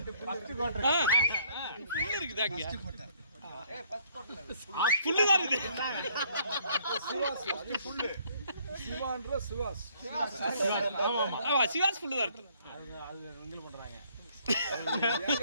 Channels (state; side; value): inverted; both; correlation -0.64